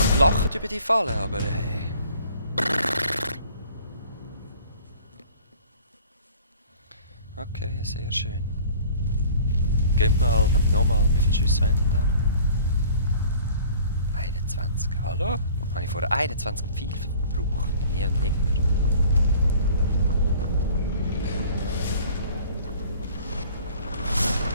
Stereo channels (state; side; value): inverted; both; correlation -0.50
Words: noch gelacht über die Falle, aber hey. Okay, sehr schön. Gehen wir mal, nochmal, wie viele Schüsse haben denn da noch? 21, hallo? Habe ich vorher 21 Pfeile verbraucht? Nie und nimmer.